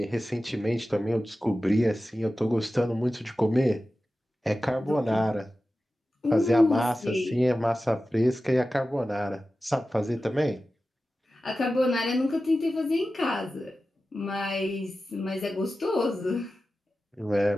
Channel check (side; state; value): both; normal; correlation 0.94